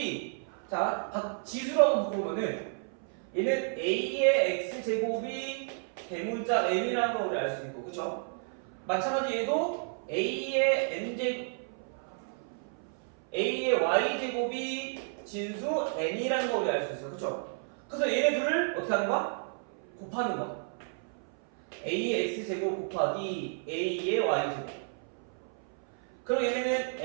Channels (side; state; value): left; silent; 57 dB below the other